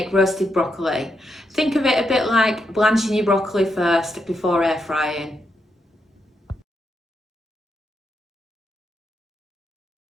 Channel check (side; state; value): both; normal; correlation 0.82